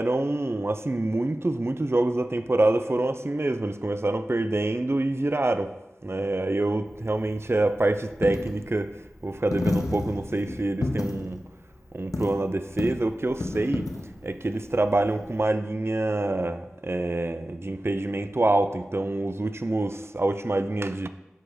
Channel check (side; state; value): both; normal; correlation 0.94